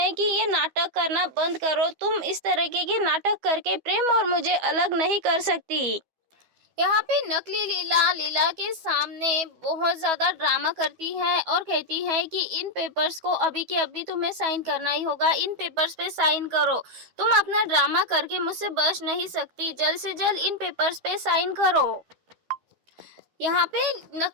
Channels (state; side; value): late; left; 12 ms